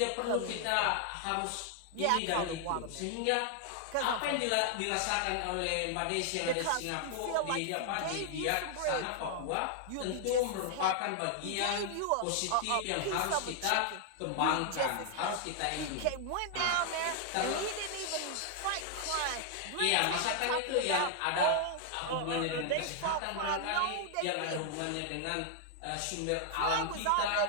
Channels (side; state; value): both; different; correlation 0.00